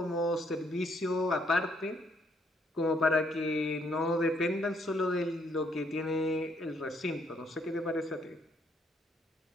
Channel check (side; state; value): both; normal; correlation 0.69